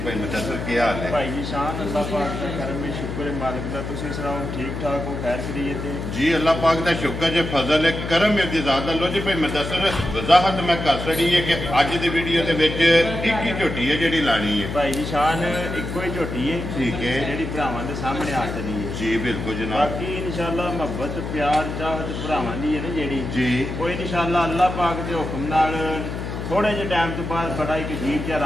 भाई मुदस्सर क्या हाल है? भाई जी शान अल्लाह पाक का करम है, शुक्र है मालिक दा। तुसीं सुनाओ ठीक ठाक हो, खैर खैरियत है? जी अल्लाह पाक का शुक्र है, फजल है, करम है ज़्यादा। लो जी भाई मुदस्सर वजाहत मैं कर छड़ी है कि अज की वीडियो के एक ही झोटी है जी लानी है। भाई जी शान इको ही झोटी है, ठीक है, जी भरावां दे सामने आ चली है। जी बिल्कुल जनाब। बाकी इंशाअल्लाह मोहब्बत प्यार चाहत भरावां दी है ना जी कोई इंशाअल्लाह अल्लाह पाक के हुक्म नाल थोड़े जे टाइम तो बाद बड़ा एक अजीब जहा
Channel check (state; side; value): noise; left; hum, 5 dB below the sound